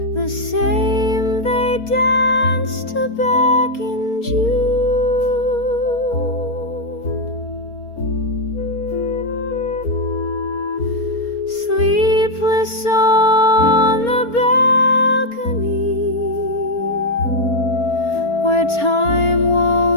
the same they danced to back in June. Sleepless on the balcony, where time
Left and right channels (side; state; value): right; late; 4.3 ms